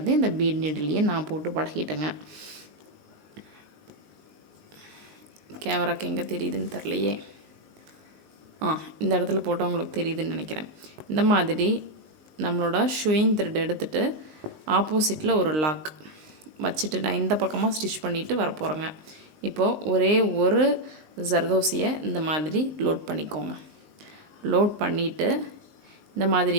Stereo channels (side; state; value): left; late; 19 ms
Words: இந்த பீட் நீடிலையே நான் போட்டு பழகிட்டேங்க. கேமராக்கு எங்கே தெரியுதுன்னு தெரிலையே. இந்த இடத்துல போட்டால் உங்களுக்கு தெரியுதுன்னு நினைக்கிறேன். இந்த மாதிரி நம்மளோட ஷூயிங் த்ரெட் எடுத்துகிட்டு ஆப்போசிட்டில் ஒரு லாக் வச்சுட்டு நான் இந்த பக்கமாக ஸ்டிச் பண்ணிவிட்டு வரப்போகிறேங்க. இப்போது ஒரே ஒரு ஜர்தோசியை இந்த மாதிரி லோட் பண்ணிக்கோங்க. லோட் பண்ணிவிட்டு இந்த